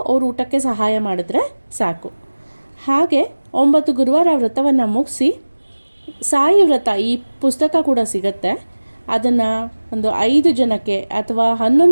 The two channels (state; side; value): inverted; both; correlation -1.00